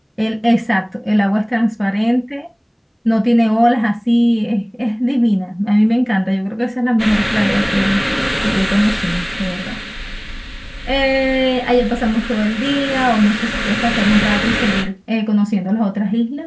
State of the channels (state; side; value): identical; both; correlation 1.00